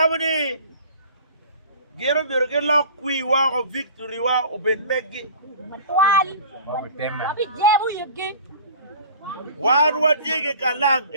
gero biro ke lo kuiwa o victory wa o ben megi. Wali. Abi jebu yugi. Wan wa tie kalang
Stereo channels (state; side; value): inverted; both; correlation -0.43